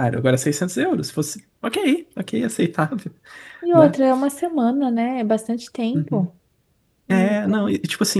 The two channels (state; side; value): identical; both; correlation 1.00